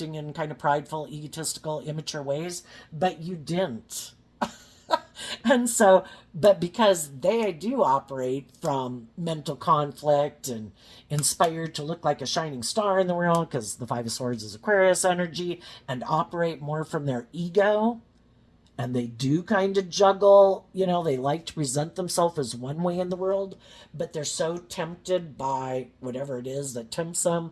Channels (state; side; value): identical; both; correlation 1.00